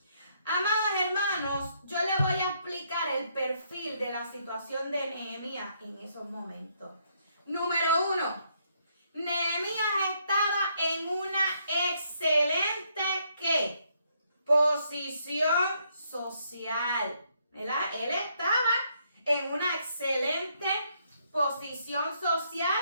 Amados hermanos, yo les voy a explicar el perfil de la situación de Nehemías en esos momentos. Número 1, Nehemías estaba en una excelente ¿qué? Posición social, ¿verdad? Él estaba en una excelente posición social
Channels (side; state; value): both; inverted; correlation -0.72